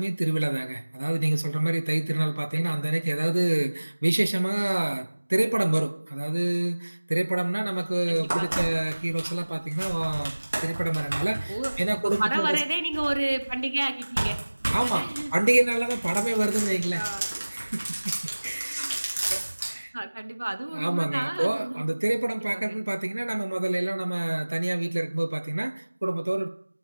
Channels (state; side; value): inverted; both; correlation -1.00